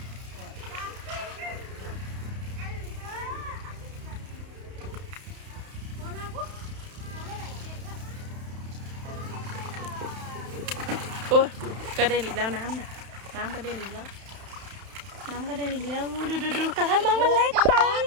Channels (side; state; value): left; late; 31 ms